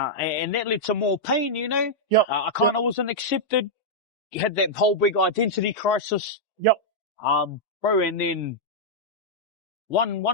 that led to more pain, Yep. I kind of wasn't accepted. You had that whole big identity crisis. Yep. Bro, and then one,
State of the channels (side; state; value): both; normal; correlation -0.06